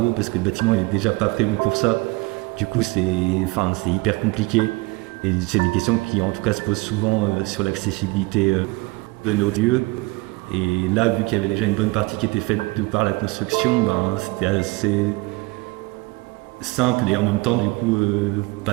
parce que le bâtiment il est déjà pas prévu pour ça. Du coup, c'est hyper compliqué. Et c'est des questions qui, en tout cas, se posent souvent sur l'accessibilité de nos lieux. Et là, vu qu'il y avait déjà une bonne partie qui était faite de par la construction, c'était assez simple et en même temps du coup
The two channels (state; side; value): quieter; left; 23.1 dB